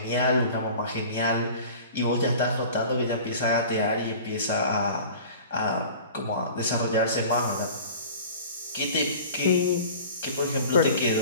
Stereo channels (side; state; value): both; inverted; correlation -0.42